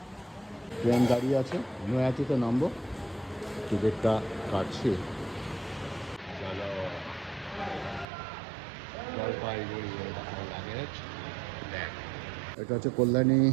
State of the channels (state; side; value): drops out; left; at 8.1 s